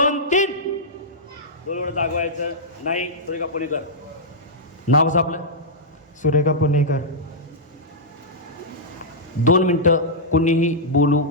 3 डोळं जागवायचं नाही सुरेखा पुणेकर नाव कसं आपलं सुरेखा पुणेकर 2 मिनटं कुणीही बोलू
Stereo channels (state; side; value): normal; both; correlation -0.11